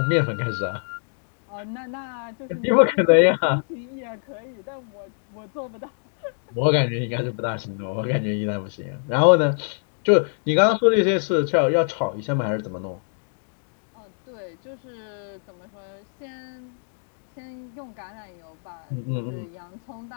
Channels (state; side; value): silent; right; digital silence